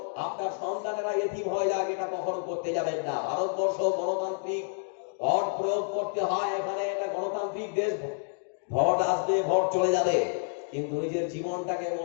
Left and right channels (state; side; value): silent; right; digital silence